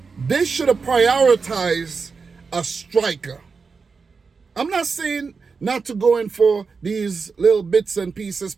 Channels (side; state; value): left; quieter; 4.9 dB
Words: they should have prioritized a striker. I'm not saying not to go in for these little bits and pieces